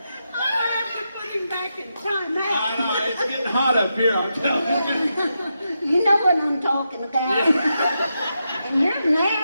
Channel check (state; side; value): inverted; both; correlation -0.86